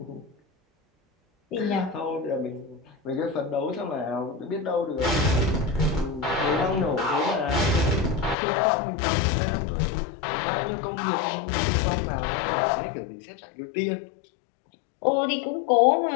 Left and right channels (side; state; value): right; drops out; at 8.3 s